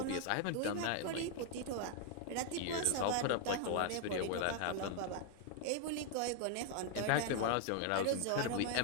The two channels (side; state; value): both; different; correlation 0.00